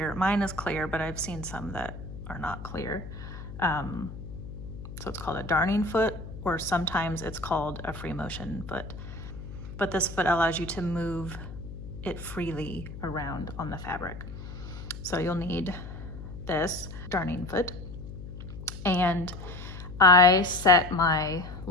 Mine is clear, but I've seen some that are not clear. So it's called a darning foot, or sometimes it's called a free motion foot. But this foot allows you to move it freely around on the fabric. So you'll need this darning foot. And I set my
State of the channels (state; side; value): noise; left; hum, 11 dB below the sound